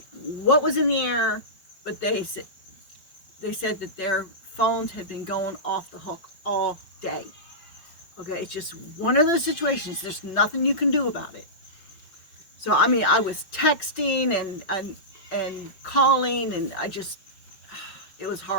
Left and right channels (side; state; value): right; late; 5.3 ms